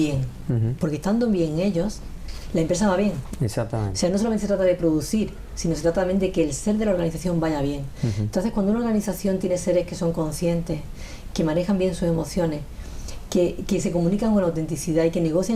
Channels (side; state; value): both; identical; correlation 1.00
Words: Porque estando bien ellos, la empresa va bien. Exactamente. O sea, no solamente se trata de producir, sino se trata también de que el ser de la organización vaya bien. Entonces, cuando una organización tiene seres que son conscientes, que manejan bien sus emociones, que se comunican con autenticidad y que